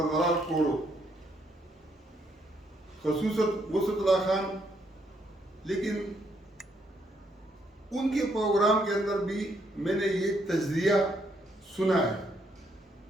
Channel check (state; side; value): normal; both; correlation 0.73